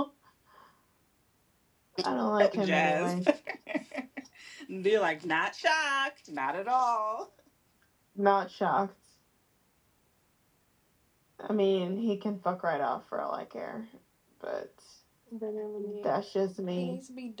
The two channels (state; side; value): identical; both; correlation 1.00